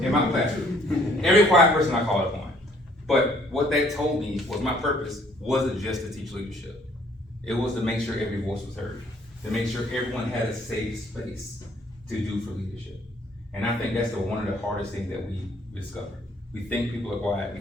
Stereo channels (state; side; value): normal; both; correlation 0.62